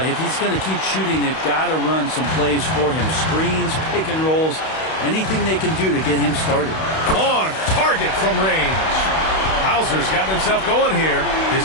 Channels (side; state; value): right; late; 31 ms